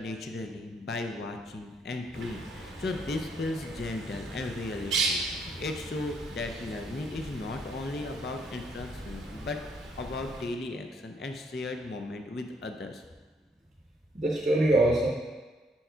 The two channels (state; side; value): normal; both; correlation 0.69